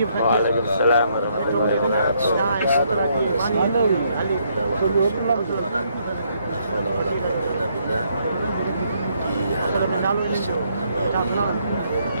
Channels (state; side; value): inverted; both; correlation -0.72